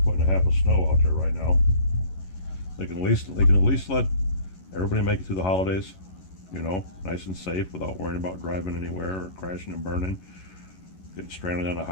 putting a half of snow out there right now. They can at least let everybody make it through the holidays, you know, nice and safe without worrying about driving anywhere or crashing and burning, getting stranded on a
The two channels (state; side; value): late; right; 11 ms